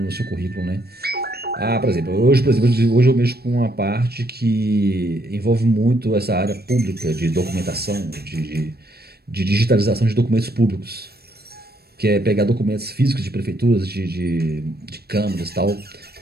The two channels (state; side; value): late; left; 0.46 ms